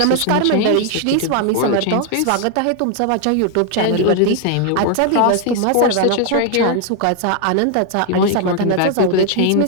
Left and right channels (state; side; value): different; both; correlation 0.00